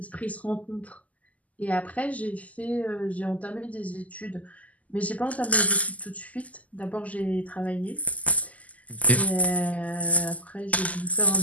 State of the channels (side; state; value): right; late; 0.074 ms